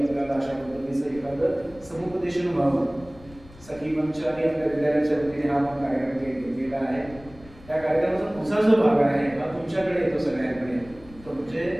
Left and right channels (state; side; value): noise; left; rumble, 21 dB below the sound